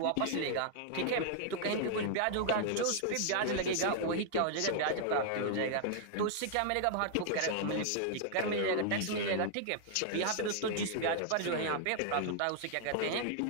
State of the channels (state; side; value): different; both; correlation -0.01